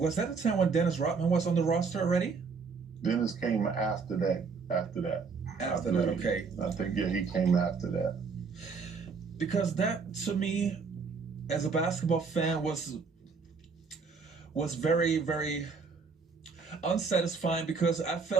that the time when Dennis Rodman was on the roster already? Dennis came after that. After that, okay. I think, yeah, he came after that. Because that, to me, as a basketball fan, was very, very unsatisfying, because I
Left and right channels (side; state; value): left; quieter; 5.0 dB